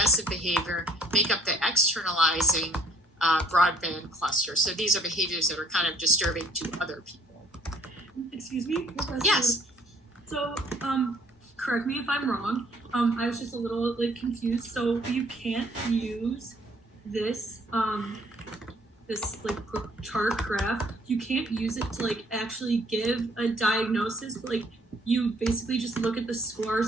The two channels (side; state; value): both; normal; correlation 0.59